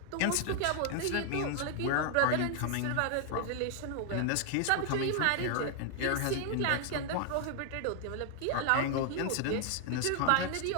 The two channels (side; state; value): both; different; correlation 0.00